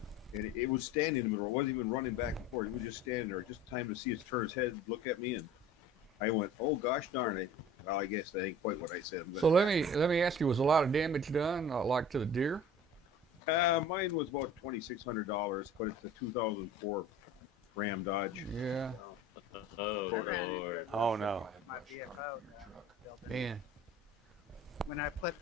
and it was standing in the middle. It wasn't even running back and forth. It was just standing there, just time to see it turn its head, look at me, and I went, "Oh gosh darn it!" Well, I guess that ain't quite what I said. But, So let me ask you: was a lot of damage done, like to the deer? mine was about $2,600, but it's a 2004 Ram Dodge. Yeah, Oh, I ran into Lord. it Oh no. with my VFO that I built in. man. When I put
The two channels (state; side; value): normal; both; correlation 0.43